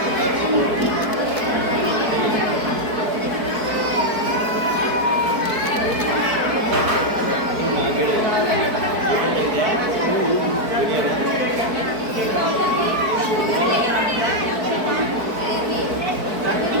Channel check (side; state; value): left; late; 4.6 ms